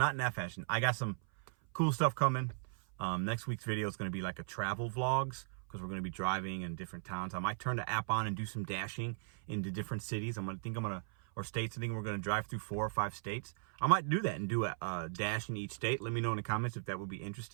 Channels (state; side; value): silent; left; 53 dB below the other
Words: in that fashion. I got some cool stuff coming. Next week's video is going to be like a travel vlogs, because we're going to be driving in different towns. I might turn the app on and do some dashing into different cities. Or states. I think we're going to drive through 4 or 5 states. I might do that and do a dash in each state. Let me know in the comments if that would be